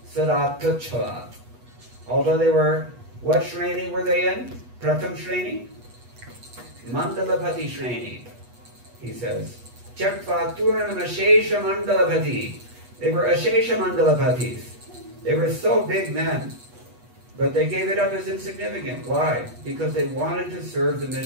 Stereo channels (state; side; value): late; left; 8.2 ms